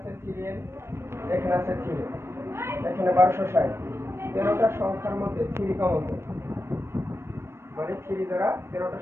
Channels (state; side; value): late; left; 0.12 ms